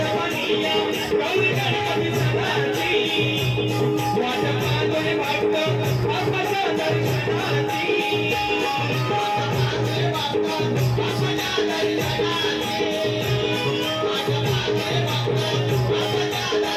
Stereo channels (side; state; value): both; identical; correlation 1.00